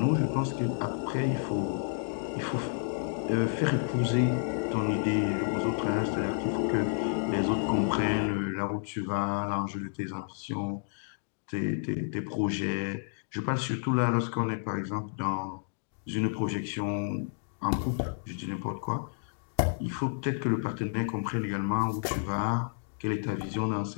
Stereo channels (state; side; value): silent; right; digital silence